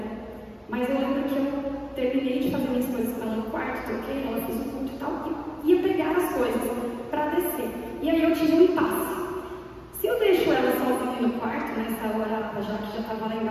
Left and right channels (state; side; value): identical; both; correlation 1.00